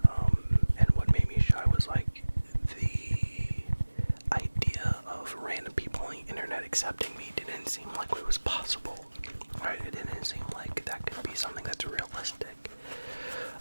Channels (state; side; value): inverted; both; correlation -1.00